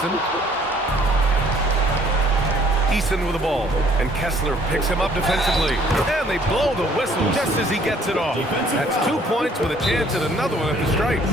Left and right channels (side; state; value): both; normal; correlation 0.60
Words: Eason with the ball, and Kessler picks him up defensively. And they blow the whistle just as he gets it off. That's 2 points with a chance at another one at the stripe.